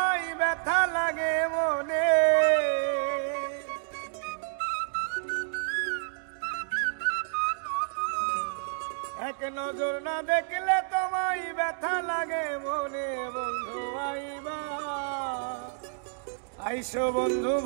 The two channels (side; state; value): left; silent; digital silence